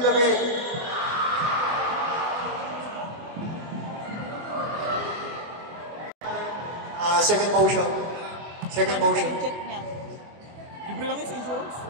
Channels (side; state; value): left; late; 24 ms